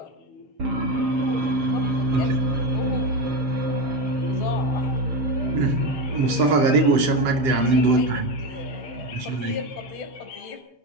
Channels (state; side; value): late; left; 7.7 ms